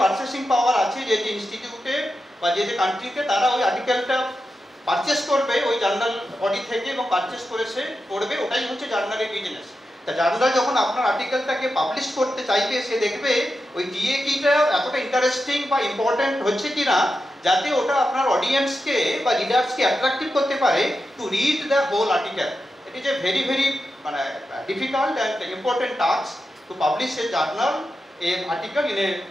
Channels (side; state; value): both; normal; correlation 0.89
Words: পারচেসিং পাওয়ার আছে, যে যে ইনস্টিটিউটে বা যে যে কান্ট্রিতে, তারা ওই আর্টিকেলটা পারচেস করবে ওই জার্নাল বডি থেকে এবং পারচেস করে সে পড়বে, ওটাই হচ্ছে জার্নালের বিজনেস। তা জার্নাল যখন আপনার আর্টিকেলটাকে পাবলিশ করতে চাইবে, সে দেখবে ওই ডিএ কিটা এতটা ইন্টারেস্টিং বা ইম্পর্টেন্ট হচ্ছে কিনা, যাতে ওটা আপনার অডিয়েন্সকে বা রিডার্সকে অ্যাট্রাক্টিভ করতে পারে to read the whole article. It is a very মানে difficult and important task to publish a journal a article in a